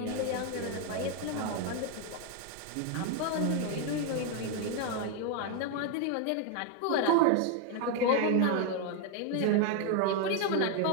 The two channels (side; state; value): both; different; correlation 0.01